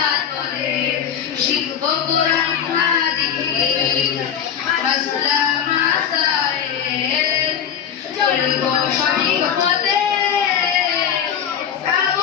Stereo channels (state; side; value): quieter; right; 8.6 dB